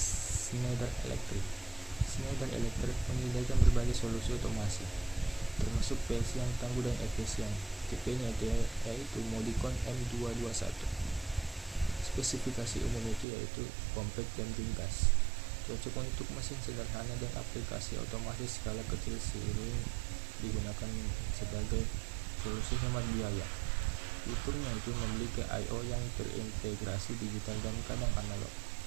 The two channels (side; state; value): left; drops out; at 13.2 s